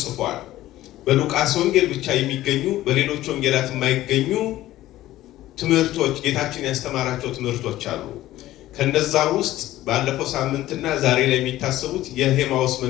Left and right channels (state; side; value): quieter; right; 15.1 dB